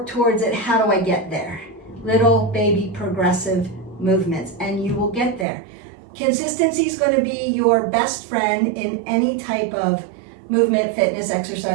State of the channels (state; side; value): drops out; left; at 5.5 s